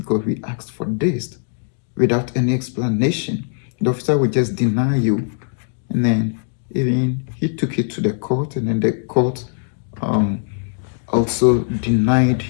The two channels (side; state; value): right; silent; digital silence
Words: we asked for this, without any explanation. The officer will just deny you. And then even he took it to the court, and then the court also denied